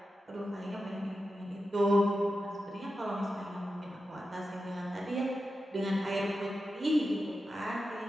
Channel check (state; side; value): normal; both; correlation 0.90